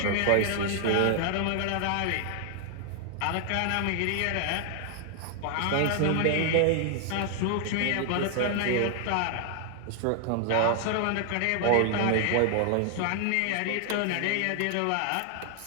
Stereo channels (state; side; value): different; both; correlation 0.00